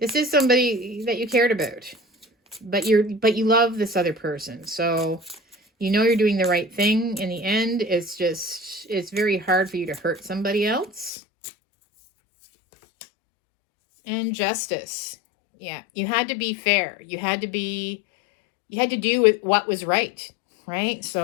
is somebody that you cared about, but you love this other person. So you know you're doing the right thing. In the end, it's very hard for you to hurt somebody else. And Justice. Yeah, you had to be fair. You had to do with what was right, right?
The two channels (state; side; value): drops out; right; at 11.1 s